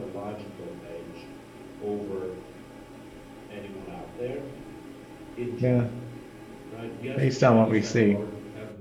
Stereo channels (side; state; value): both; identical; correlation 1.00